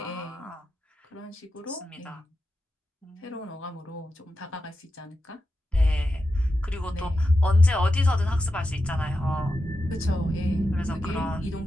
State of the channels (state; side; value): normal; both; correlation 0.90